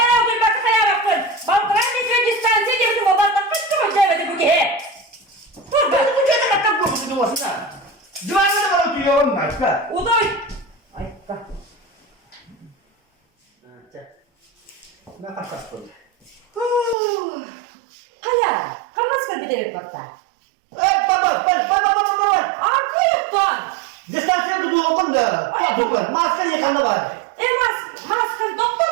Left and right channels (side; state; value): left; drops out; at 16.9 s